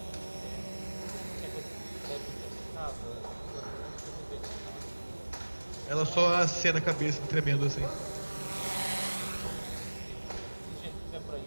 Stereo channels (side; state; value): both; inverted; correlation -1.00